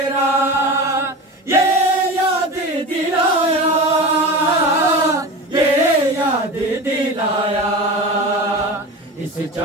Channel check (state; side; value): normal; both; correlation 0.29